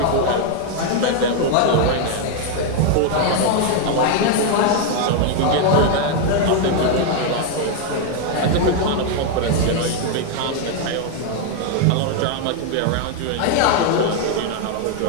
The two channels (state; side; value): different; both; correlation 0.00